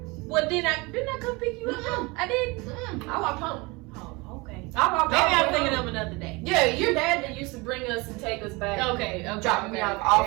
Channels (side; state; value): left; quieter; 25.6 dB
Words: Well, didn't I come pick you up? I did. I walked home. Oh, okay. I walked Maybe I'm home. thinking of another day. Yeah, your dad that used to bring us and take us back. Okay. Drop me off